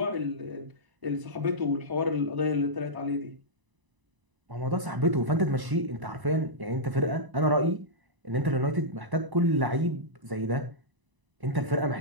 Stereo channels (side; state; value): left; late; 1.0 ms